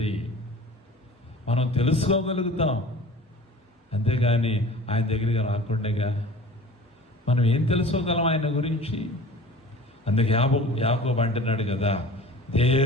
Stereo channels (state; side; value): normal; both; correlation 0.42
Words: మనం తెలుసుకోగలుగుతాం. అంతేగాని ఆయన దగ్గరికి రాకుండా మనం ఏం తెలుసుకోగలం ఆయన గురించి? అందుకే యాకోబు అంటున్నాడు కదా,